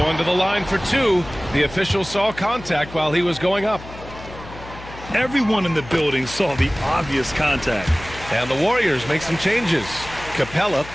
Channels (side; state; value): left; noise; hum, 15 dB below the sound